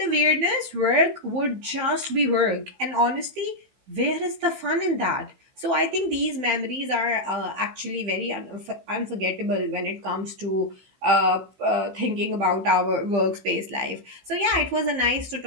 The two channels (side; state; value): left; late; 15 ms